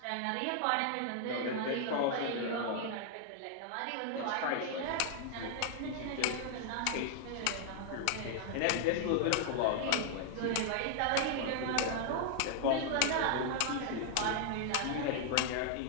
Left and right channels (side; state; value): both; different; correlation 0.00